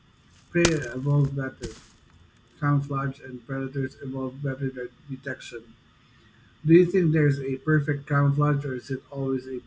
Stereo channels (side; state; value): both; identical; correlation 1.00